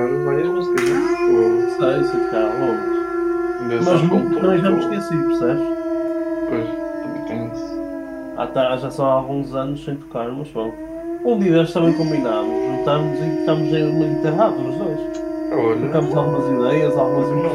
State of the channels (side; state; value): both; identical; correlation 1.00